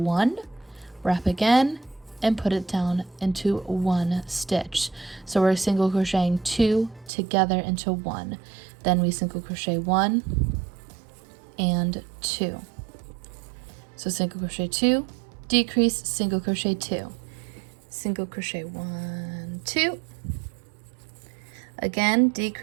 wrap again, and put it down into 1 stitch. So we're single crocheting 2 together into 1. Then we single crochet 1 and 2. So single crochet 2, decrease, single crochet 2, single crochet 1, 2, again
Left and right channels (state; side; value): drops out; left; at 7.1 s